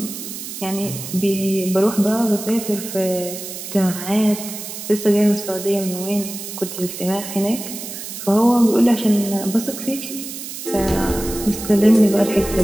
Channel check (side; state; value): right; noise; hiss, 9 dB below the sound